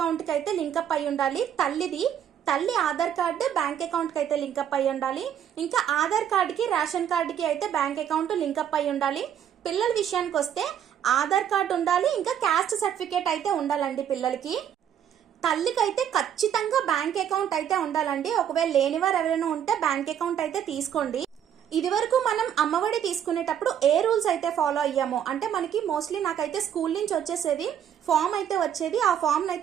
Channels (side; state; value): left; quieter; 9.4 dB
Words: కి అయితే లింకప్ అయి ఉండాలి. తల్లి ఆధార్ కార్డు బ్యాంక్ అకౌంట్ కి అయితే లింకప్ అయి ఉండాలి. ఇంకా ఆధార్ కార్డుకి రేషన్ కార్డుకి అయితే బ్యాంక్ అకౌంట్ లింకప్ అయి ఉండాలి. పిల్లల విషయానికి వస్తే ఆధార్ కార్డు ఉండాలి, ఇంకా క్యాస్ట్ సర్టిఫికేట్ అయితే ఉండాలండి పిల్లలకి. తల్లికి అయితే ఖచ్చితంగా బ్యాంక్ అకౌంట్ అయితే ఉండాలండి. ఒకవేళ లేనివారు ఎవరైనా ఉంటే బ్యాంక్ అకౌంట్ అయితే తీసుకోండి. ఇది వరకు మనం అమ్మఒడి తీసుకునేటప్పుడు ఏ రూల్స్ అయితే ఫాలో అయ్యామో, అంటే మనకి మోస్ట్లీ నాకైతే స్కూల్ నుంచి వచ్చేసేది ఫామ్ అయితే వచ్చేది, ఆ ఫామ్